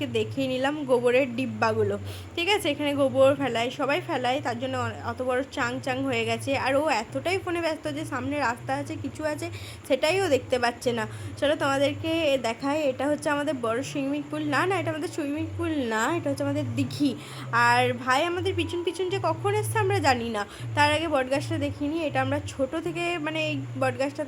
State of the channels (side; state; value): both; identical; correlation 1.00